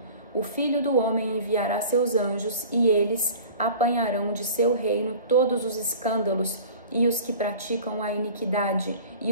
O Filho do Homem enviará seus anjos e eles apanharão de seu reino todos os escândalos e os que praticam a iniquidade e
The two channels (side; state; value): both; inverted; correlation -0.42